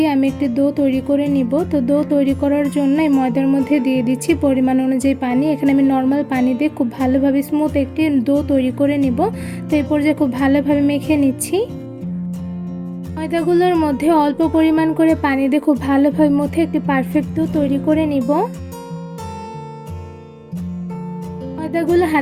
আমি একটি ডো তৈরি করে নিব। তো ডো তৈরি করার জন্য এই ময়দার মধ্যে দিয়ে দিচ্ছি পরিমাণ অনুযায়ী পানি। এখানে আমি নর্মাল পানি দিয়ে খুব ভালোভাবে স্মুথ একটি ডো তৈরি করে নিব। তো এই পর্যায়ে খুব ভালোভাবে মেখে নিচ্ছি। ময়দাগুলোর মধ্যে অল্প পরিমাণ করে পানি দিয়ে খুব ভালোভাবে মথে একটি পারফেক্ট ডো তৈরি করে নিব। ময়দাগুলো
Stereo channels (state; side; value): identical; both; correlation 1.00